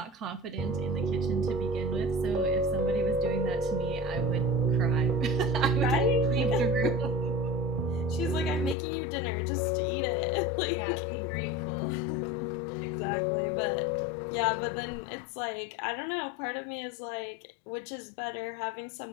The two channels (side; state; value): right; drops out; at 8.8 s